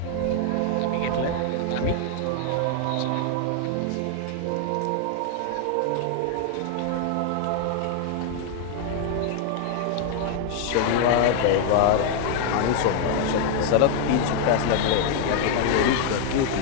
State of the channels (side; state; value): both; different; correlation 0.00